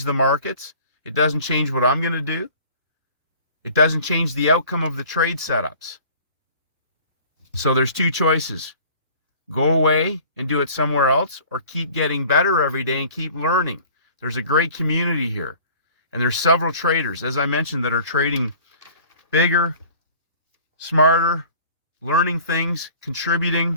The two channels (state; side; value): inverted; both; correlation -0.48